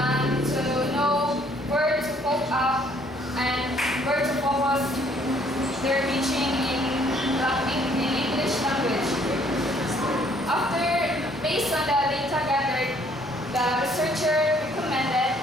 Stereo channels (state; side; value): normal; both; correlation 0.63